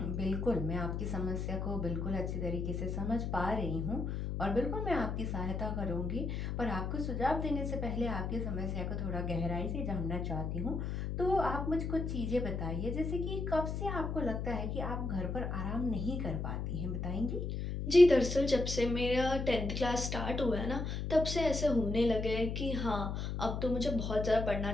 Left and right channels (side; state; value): left; noise; hum, 3 dB below the sound